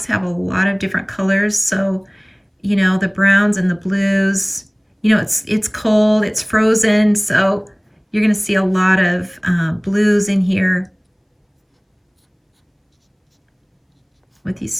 have a lot of different colors. So, the browns and the blues, it's cold, it's frozen. So you're going to see a lot of blues in here with these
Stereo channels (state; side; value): identical; both; correlation 1.00